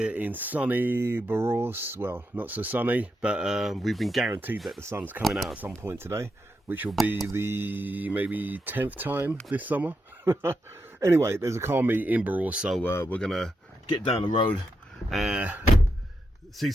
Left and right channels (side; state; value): both; normal; correlation 0.85